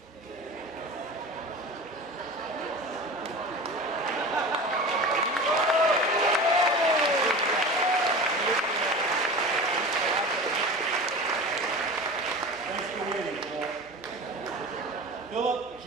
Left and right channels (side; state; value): both; normal; correlation 0.33